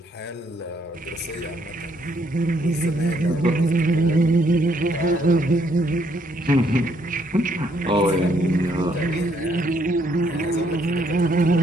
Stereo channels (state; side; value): normal; both; correlation 0.70